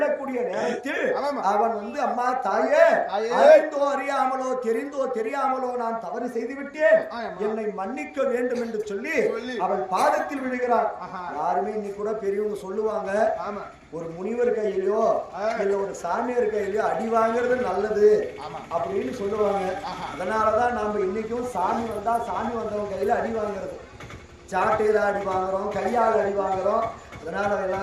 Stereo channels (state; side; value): identical; both; correlation 1.00